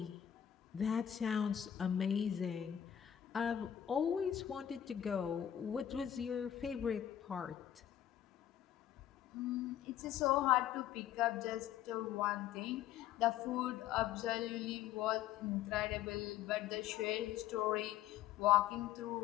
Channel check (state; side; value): quieter; right; 10.8 dB